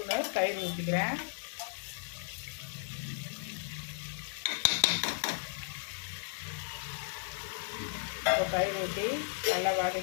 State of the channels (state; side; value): silent; right; digital silence